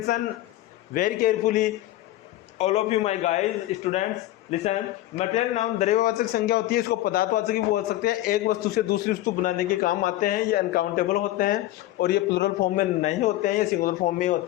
very carefully, all of you my guys students listen. Material noun द्रव्यवाचक संज्ञा होती है, इसको पदार्थवाचक भी बोल सकते हैं। एक वस्तु से दूसरी वस्तु बनाने के काम आते हैं। ये अनकाउंटेबल होते हैं और ये प्लूरल फॉर्म में नहीं होते हैं, ये सिंगुलर फॉर्म में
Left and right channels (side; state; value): right; quieter; 15.3 dB